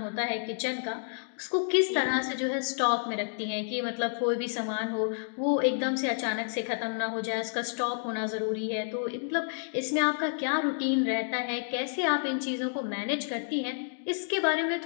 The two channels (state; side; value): silent; right; digital silence